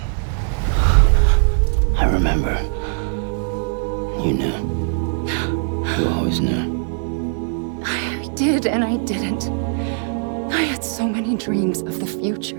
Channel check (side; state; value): left; silent; digital silence